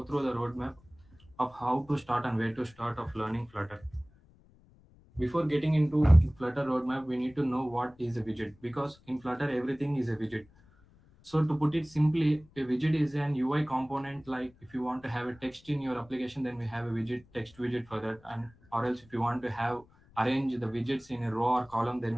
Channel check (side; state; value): left; noise; rumble, 28 dB below the sound